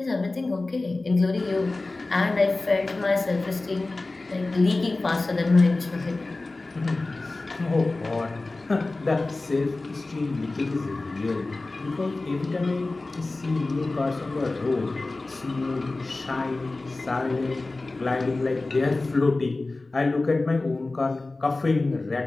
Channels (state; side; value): quieter; right; 3.2 dB